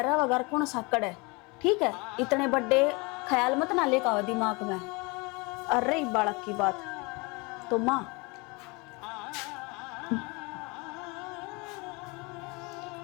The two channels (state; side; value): quieter; right; 27.6 dB